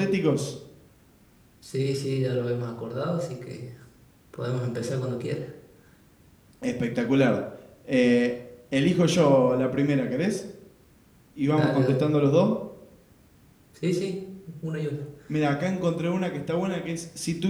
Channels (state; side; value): identical; both; correlation 1.00